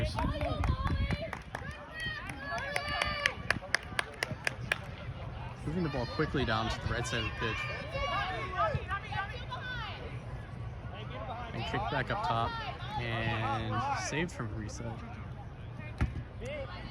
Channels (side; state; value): both; identical; correlation 1.00